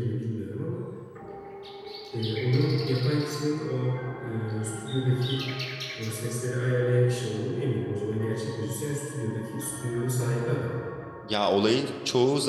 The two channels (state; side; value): identical; both; correlation 1.00